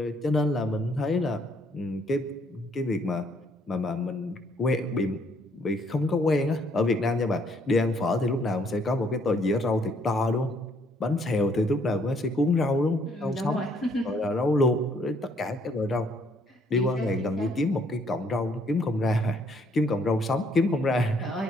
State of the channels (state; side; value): normal; both; correlation 0.67